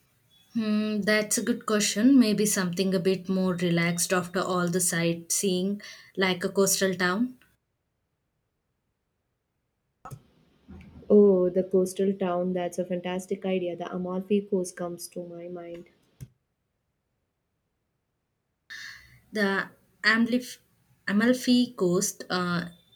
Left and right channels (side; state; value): both; identical; correlation 1.00